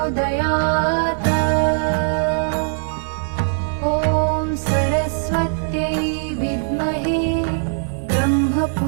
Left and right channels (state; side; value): silent; left; digital silence